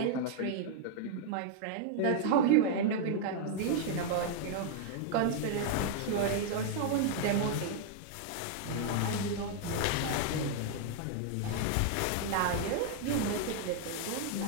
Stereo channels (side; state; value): both; different; correlation -0.01